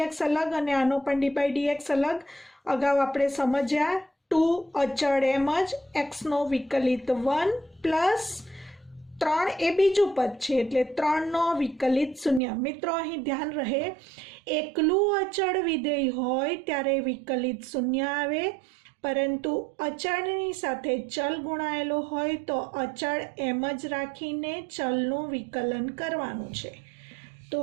અલગ અને આનો પણ d/dx અલગ. અગાઉ આપણે સમજ્યા 2 અચળ એમ જ, x નો વિકલિત 1 પ્લસ 3 એ બીજું પદ છે એટલે 3 નો વિકલિત 0. મિત્રો અહીં ધ્યાન રહે, એકલું અચળ વિધેય હોય ત્યારે વિકલિત 0 આવે, પરંતુ અચળની સાથે ચલ ગુણાયેલો હોય તો અચળ એમ જ રાખીને ચલનું વિકલન કરવાનું છે. તો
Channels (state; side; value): drops out; left; at 12.4 s